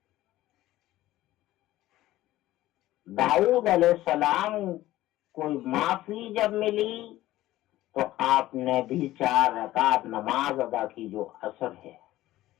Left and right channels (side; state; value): right; quieter; 15.6 dB